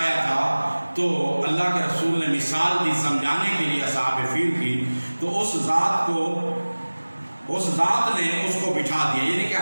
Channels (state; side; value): inverted; both; correlation -1.00